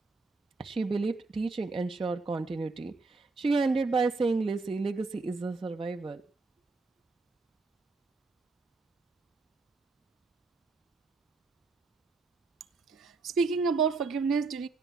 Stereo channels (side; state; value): left; quieter; 3.9 dB